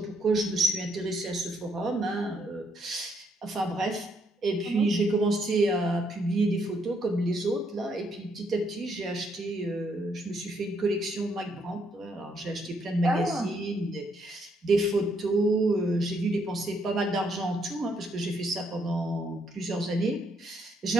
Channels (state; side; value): normal; both; correlation 0.73